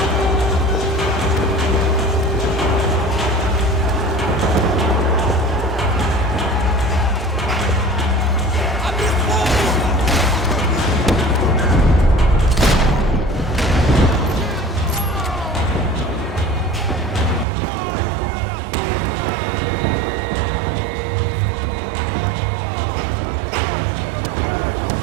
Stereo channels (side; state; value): left; drops out; at 17.4 s